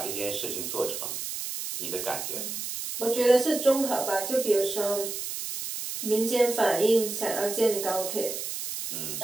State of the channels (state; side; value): noise; right; hiss, 5 dB below the sound